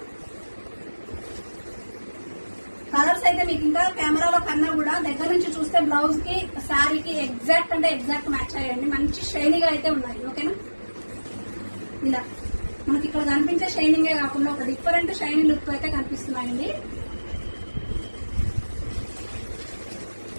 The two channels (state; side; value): inverted; both; correlation -1.00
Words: colours అయితే మీకు ఇంకా కెమెరాలో కన్నా కూడా దగ్గర నుంచి చూస్తే బ్లౌజ్ కి శారీకి ఎగ్జాక్ట్ అంటే ఎగ్జాక్ట్ మ్యాచ్ అయ్యండి. మంచి షైనీగా అయితే ఉన్నాయి. ఓకేనా, ఇలా మనకి ఇక్కడ కనిపించే షైనింగే కాకుండా ఒక డిఫరెంట్ షైనింగ్ లుక్ అయితే కనిపిస్తున్నాయండి.